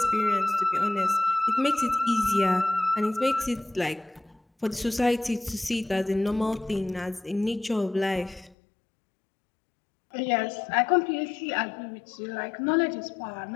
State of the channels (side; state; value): right; drops out; at 8.6 s